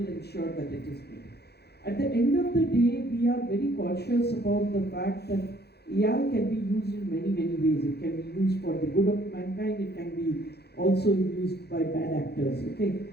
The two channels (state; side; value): late; right; 0.48 ms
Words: ensure that it is made. At the end of the day, we are very cautious about the fact that AI can be used in many, many ways. It can be used for the good of mankind. It can be also used by bad actors, okay?